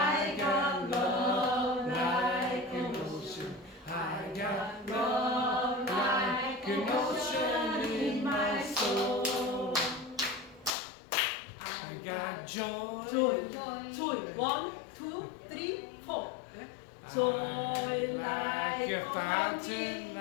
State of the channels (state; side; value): drops out; right; at 10.7 s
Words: got love like an ocean. I got love like an ocean in my soul. I got joy. Joy. 1, 2, 3, 4. Joy like a fountain.